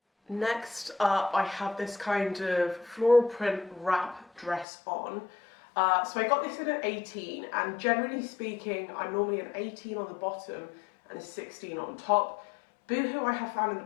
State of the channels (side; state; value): right; drops out; at 4.7 s